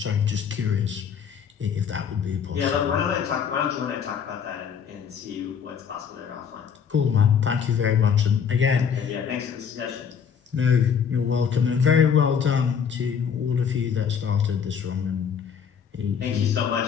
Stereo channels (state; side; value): quieter; right; 7.2 dB